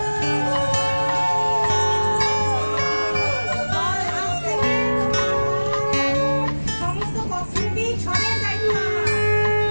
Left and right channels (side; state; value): both; inverted; correlation -1.00